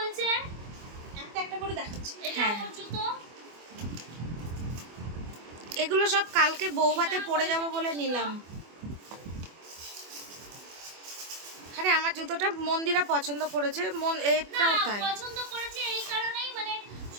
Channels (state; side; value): late; left; 24 ms